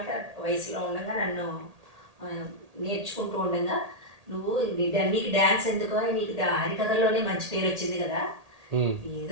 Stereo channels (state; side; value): late; left; 1.8 ms